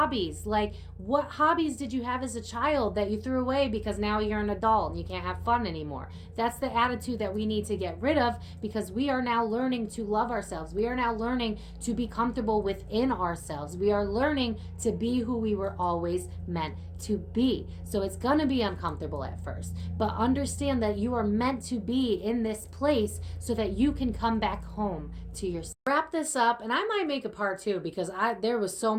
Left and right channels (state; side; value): identical; both; correlation 1.00